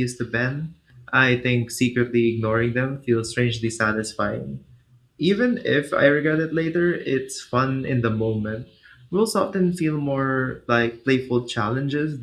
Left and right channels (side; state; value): both; identical; correlation 1.00